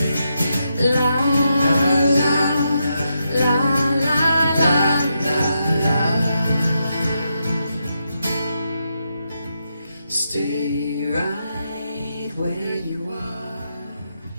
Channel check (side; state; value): both; inverted; correlation -0.83